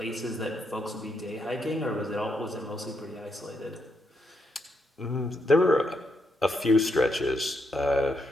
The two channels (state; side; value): normal; both; correlation 0.79